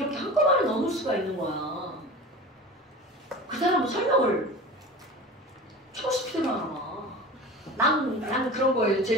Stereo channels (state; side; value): normal; both; correlation 0.34